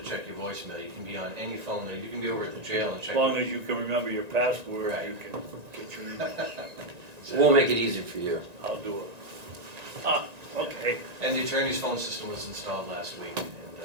check your voicemail. You can be on any phone. You can be over at the jail and check. As long as you can remember your password, Right. you can get your email. We'll make it easy for you. I'll do it. Okay. And the attorney's phone system was installed last week,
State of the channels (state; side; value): late; left; 1.9 ms